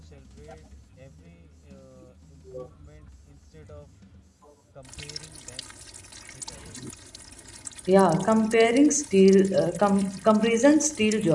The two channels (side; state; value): both; identical; correlation 1.00